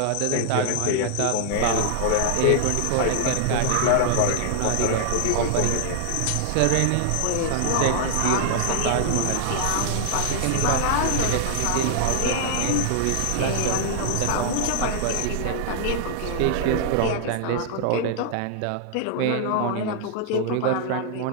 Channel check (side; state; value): both; different; correlation 0.00